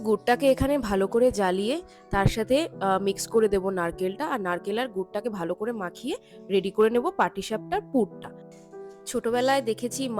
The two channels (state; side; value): identical; both; correlation 1.00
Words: গুড়টাকে এখানে ভালো করে জ্বালিয়ে তার সাথে মিক্স করে দেব নারকেলটা, আর নারকেল আর গুড়টাকে ভালো করে মাখিয়ে রেডি করে নেব পাটিসাপটার পুরটা। ছোটবেলায় দেখেছি